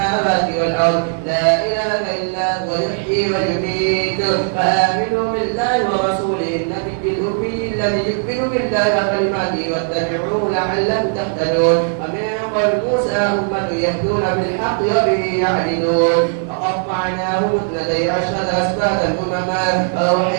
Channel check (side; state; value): left; silent; 57 dB below the other